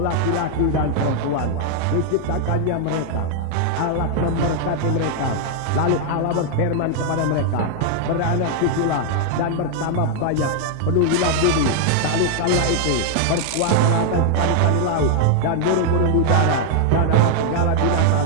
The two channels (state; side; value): different; both; correlation 0.00